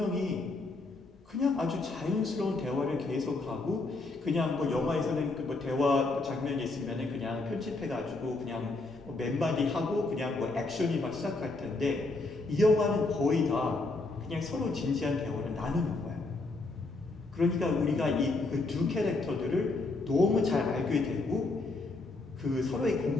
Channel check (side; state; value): right; quieter; 3.3 dB